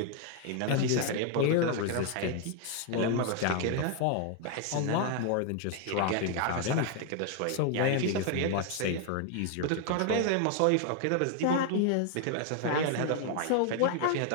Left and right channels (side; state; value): both; different; correlation 0.00